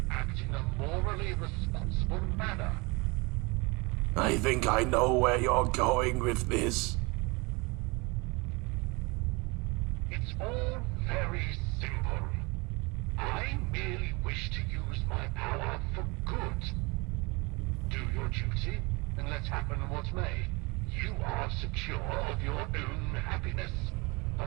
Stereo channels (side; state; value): left; quieter; 26.9 dB